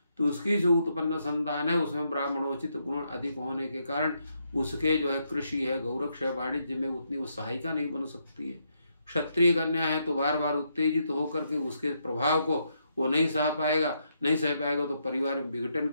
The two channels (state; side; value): inverted; both; correlation -0.78